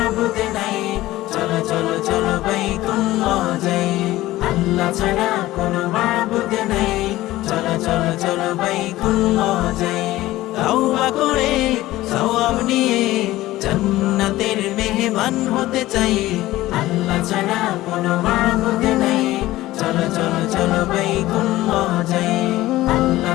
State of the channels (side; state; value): right; quieter; 16.7 dB